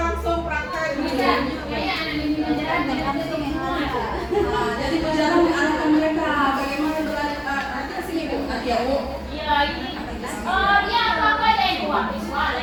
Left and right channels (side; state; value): both; identical; correlation 1.00